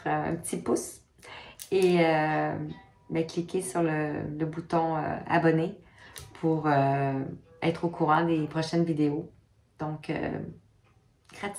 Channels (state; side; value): identical; both; correlation 1.00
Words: un petit pouce et ben, cliquer sur le bouton abonner pour être au courant des prochaines vidéos. Donc,